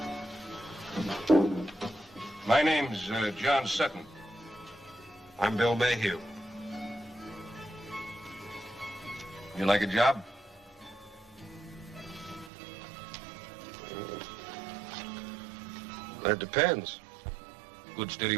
My name's John Sutton. I'm Bill Mayhew. You like a job? That depends. Good steady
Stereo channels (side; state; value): left; drops out; at 12.5 s